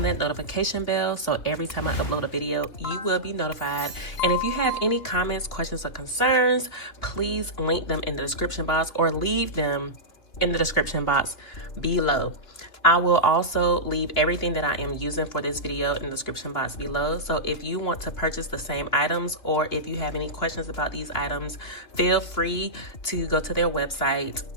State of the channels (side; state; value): right; late; 2.6 ms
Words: that notification bell so every time I upload a video, you will be notified. And if you have any comments, questions, or concerns, please link them in the description box or leave them in the description box below. I will also leave everything that I am using for this video in the description box below. So if you want to purchase the same items or if you have any questions about these items, feel free to go to their website